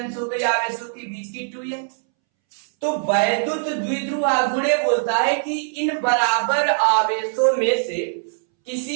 हो गई आवेशों के बीच की 2l। तो वैद्युत द्विध्रुव आघूर्ण बोलता है कि इन बराबर आवेशों में से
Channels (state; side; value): silent; left; 64 dB below the other